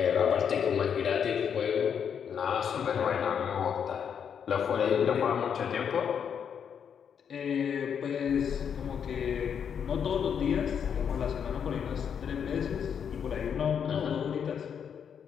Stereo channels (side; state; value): right; quieter; 7.6 dB